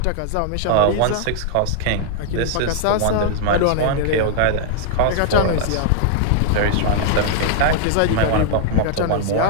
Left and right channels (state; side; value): different; both; correlation -0.01